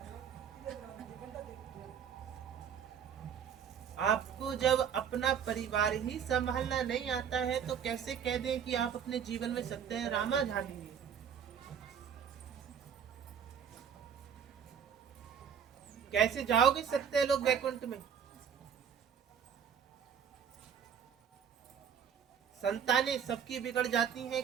आपको जब अपना परिवार ही संभालना नहीं आता है तो कैसे कह दें कि आप अपने जीवन में सत्य रामा झालेंगे। कैसे जाओगे सत्य लोग वैकुंठ में। संतानें सबकी बिगड़ जाती हैं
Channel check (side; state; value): left; quieter; 7.9 dB